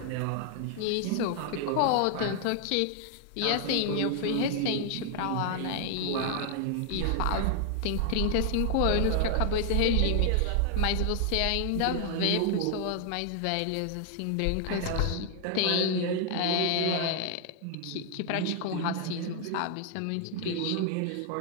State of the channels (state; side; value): different; both; correlation 0.00